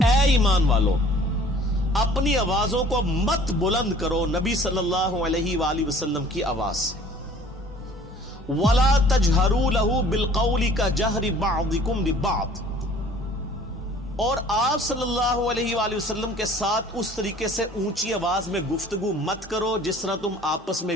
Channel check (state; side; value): normal; both; correlation 0.52